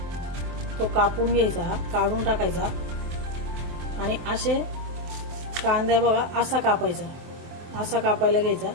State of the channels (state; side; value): late; left; 24 ms